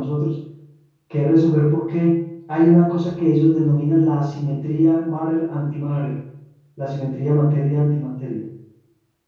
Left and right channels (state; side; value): identical; both; correlation 1.00